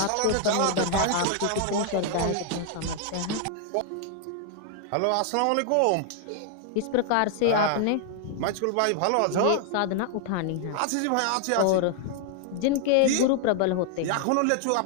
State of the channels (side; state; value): both; different; correlation 0.00